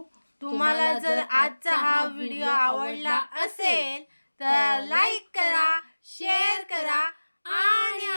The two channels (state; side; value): inverted; both; correlation -1.00